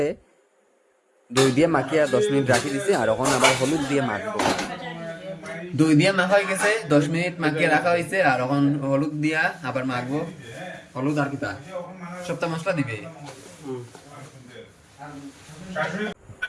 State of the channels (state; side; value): identical; both; correlation 1.00